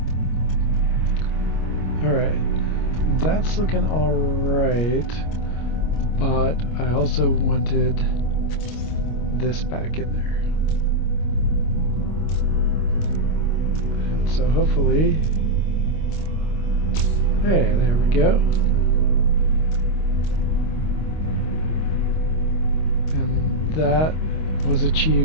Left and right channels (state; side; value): late; right; 25 ms